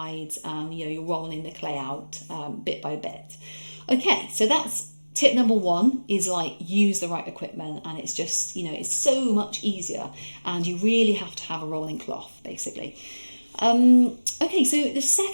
you're rolling the clay out bit by bit. Okay, so that's tip number one, is use the right equipment, and it's just it's so much easier, and you really have to have a rolling cloth basically. Okay, so the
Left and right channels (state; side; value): inverted; both; correlation -1.00